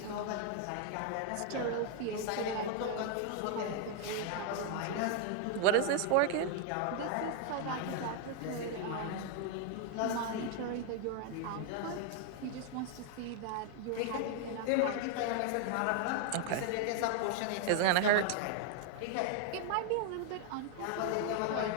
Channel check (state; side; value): different; both; correlation 0.00